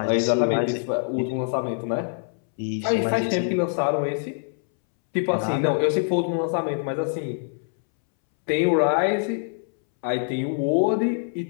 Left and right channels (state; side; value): silent; right; 62 dB below the other